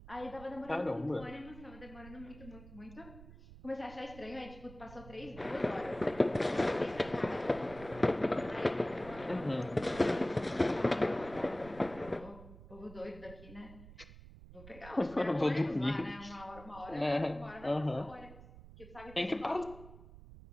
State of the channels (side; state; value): right; noise; rumble, 17 dB below the sound